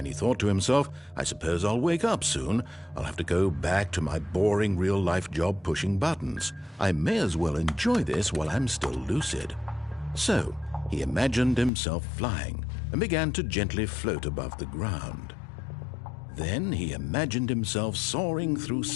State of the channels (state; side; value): drops out; right; at 11.7 s